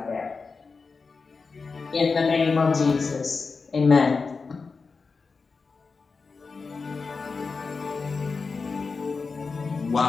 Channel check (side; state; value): right; quieter; 4.6 dB